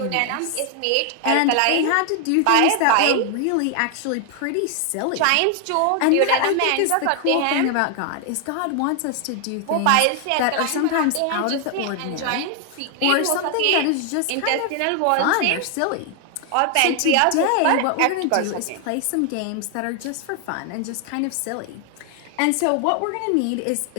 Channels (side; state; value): both; different; correlation 0.00